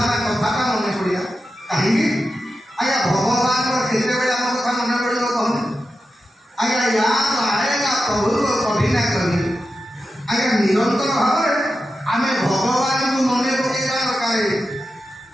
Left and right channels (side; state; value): both; normal; correlation 0.91